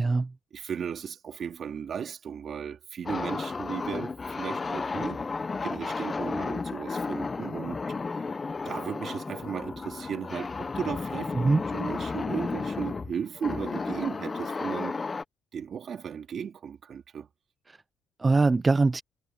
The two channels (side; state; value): both; normal; correlation 0.89